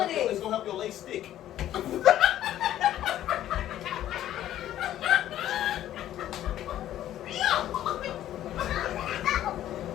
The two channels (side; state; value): right; quieter; 12.4 dB